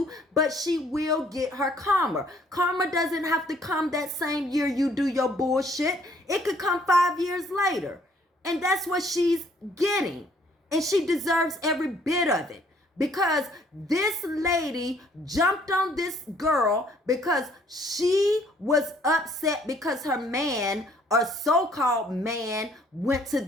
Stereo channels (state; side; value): normal; both; correlation 0.62